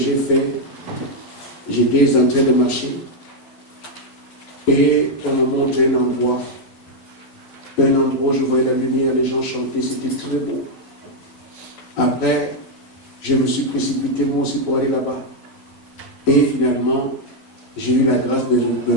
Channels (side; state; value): right; late; 11 ms